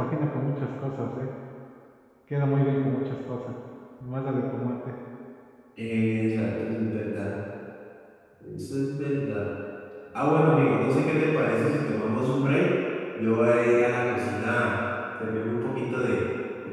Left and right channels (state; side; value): identical; both; correlation 1.00